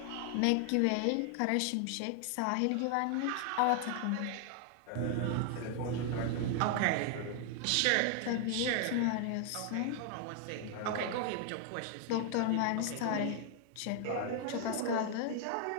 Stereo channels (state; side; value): different; both; correlation 0.00